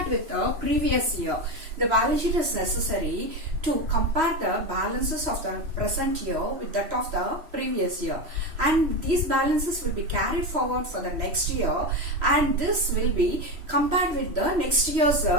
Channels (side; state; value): left; late; 3.1 ms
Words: with the previous year. The balance sheet is necessary to compare the balances of the present year with that of the previous year, and these balances will be carried forward for the next year, and this will be compared with the next year's